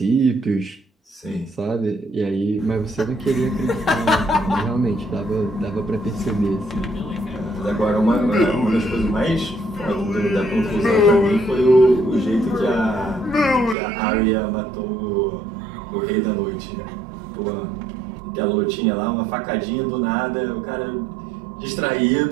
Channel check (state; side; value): drops out; left; at 13.8 s